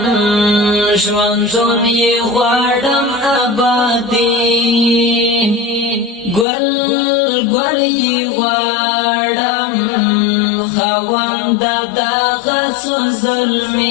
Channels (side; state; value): right; drops out; at 6.5 s